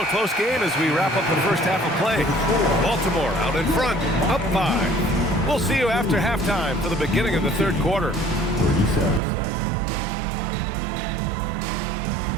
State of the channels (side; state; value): left; drops out; at 9.2 s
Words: a close game as we wrap up the first half of play. Baltimore out in front, up 5. We'll see you after halftime for the beginning of the third quarter.